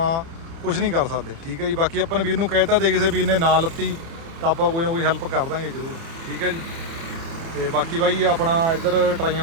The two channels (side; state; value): left; late; 30 ms